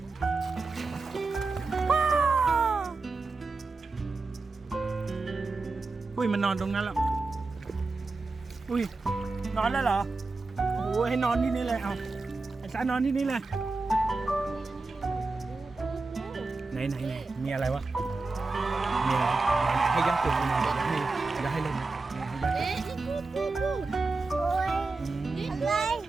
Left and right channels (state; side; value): quieter; left; 3.7 dB